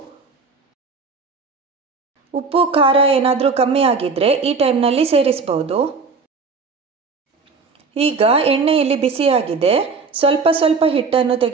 ಉಪ್ಪು ಖಾರ ಏನಾದರೂ ಕಮ್ಮಿ ಆಗಿದ್ರೆ ಈ ಟೈಮ್ನಲ್ಲಿ ಸೇರಿಸಬಹುದು. ಈಗ ಎಣ್ಣೆ ಇಲ್ಲಿ ಬಿಸಿಯಾಗಿದೆ, ಸ್ವಲ್ಪ ಸ್ವಲ್ಪ ಹಿಟ್ಟನ್ನು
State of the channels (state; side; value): quieter; left; 4.6 dB